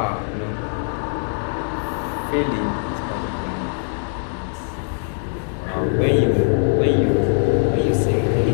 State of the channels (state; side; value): silent; right; digital silence